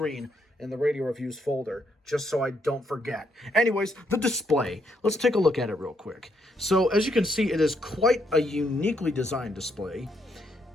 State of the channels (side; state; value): both; normal; correlation 0.75